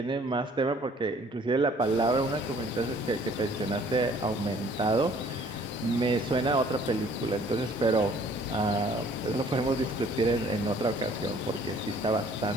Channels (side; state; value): both; normal; correlation 0.57